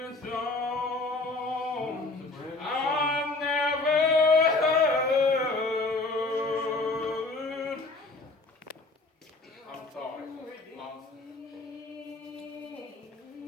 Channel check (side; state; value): right; quieter; 3.3 dB